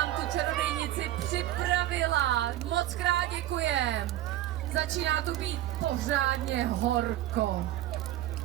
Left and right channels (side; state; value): left; quieter; 14.0 dB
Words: tu čarodějnici připravila. Moc krát děkujem. Začíná tu být pořádně horko.